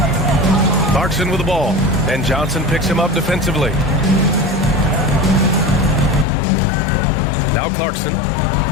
Clarkson with the ball, and Johnson picks him up defensively. Now Clarkson,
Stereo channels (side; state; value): right; drops out; at 6.2 s